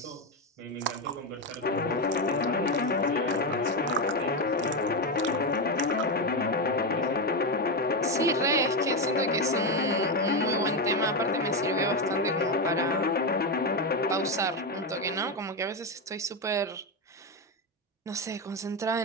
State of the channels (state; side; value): normal; both; correlation 0.10